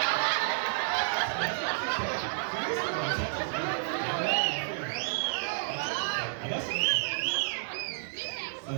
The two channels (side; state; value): left; silent; digital silence